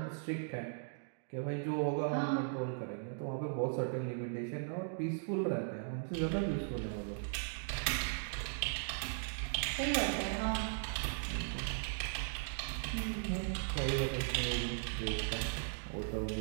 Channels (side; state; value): left; silent; digital silence